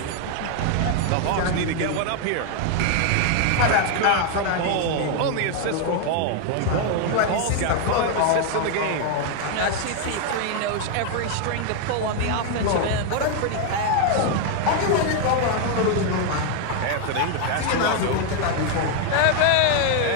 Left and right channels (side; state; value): both; different; correlation 0.00